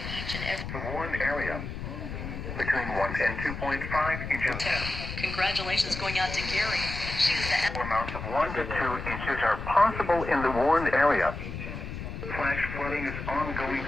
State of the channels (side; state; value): left; noise; rumble, 7 dB below the sound